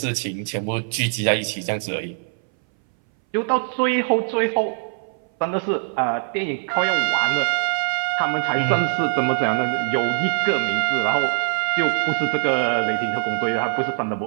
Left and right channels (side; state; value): left; silent; 61 dB below the other